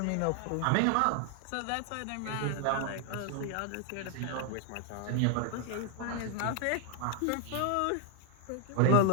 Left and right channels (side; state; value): both; different; correlation 0.00